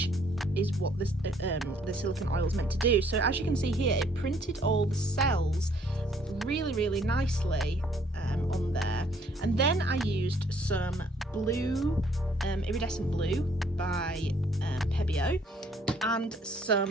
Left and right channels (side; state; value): both; normal; correlation 0.63